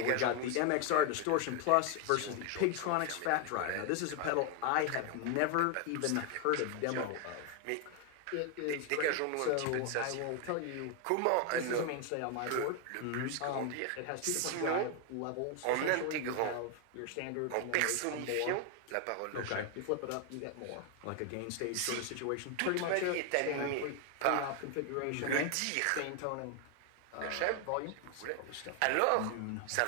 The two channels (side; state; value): both; different; correlation 0.01